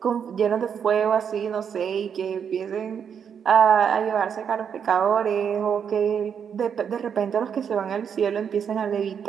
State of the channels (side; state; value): left; quieter; 7.5 dB